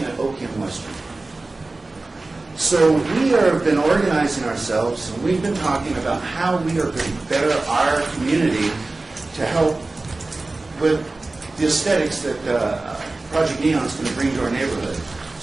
at Oakey and Western. So we have been organizing ourselves, and we've been talking about how we are going to better our community to help with the aesthetics that Project Neon is going to bring to our neighborhood.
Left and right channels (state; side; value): quieter; left; 3.2 dB